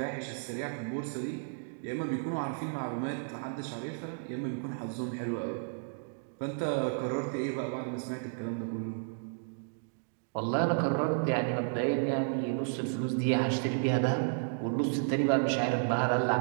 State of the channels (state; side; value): silent; left; digital silence